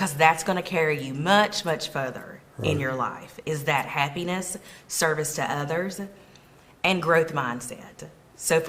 that's going to carry you much, much further in your life, is that happiness, service to others, and growth mindset. So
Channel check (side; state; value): both; identical; correlation 1.00